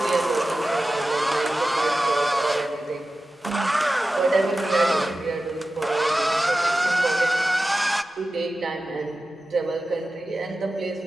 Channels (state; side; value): normal; both; correlation 0.94